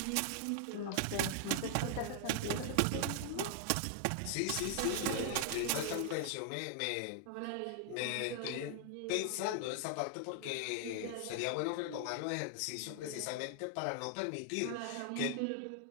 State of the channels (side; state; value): both; different; correlation 0.00